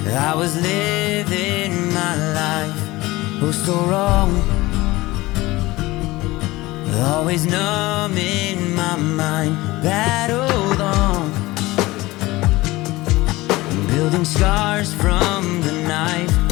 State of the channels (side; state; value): right; quieter; 19.7 dB